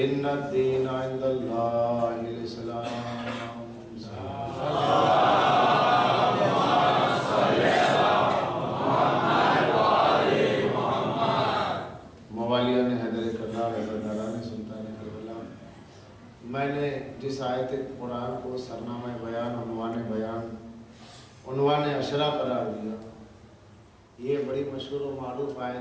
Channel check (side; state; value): both; identical; correlation 1.00